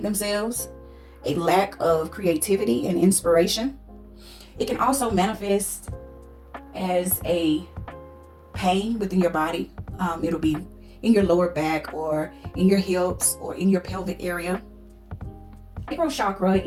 themselves, a lack of creativity and inspiration. It can also manifest as a pain within your body. It'll be in your lower back or in your hips or in your pelvic area. Sacral chakra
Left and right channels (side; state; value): both; identical; correlation 1.00